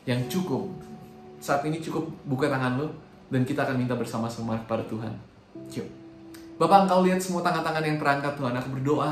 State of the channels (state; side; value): identical; both; correlation 1.00